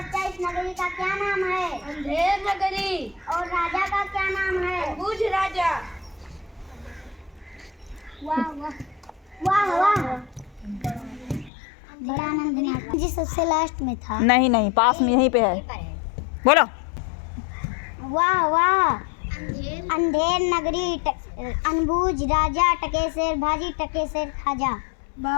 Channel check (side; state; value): right; drops out; at 11.5 s